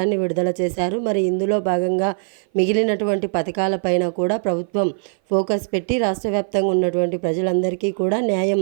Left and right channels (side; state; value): left; silent; 58 dB below the other